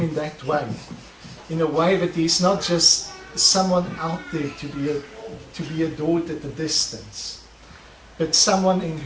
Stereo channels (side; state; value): both; identical; correlation 1.00